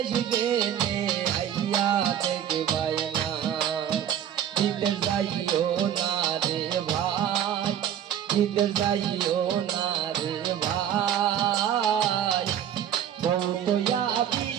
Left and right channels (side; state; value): left; quieter; 9.9 dB